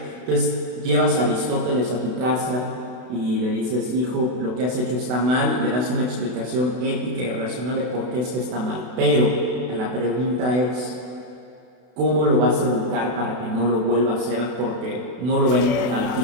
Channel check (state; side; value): late; left; 32 ms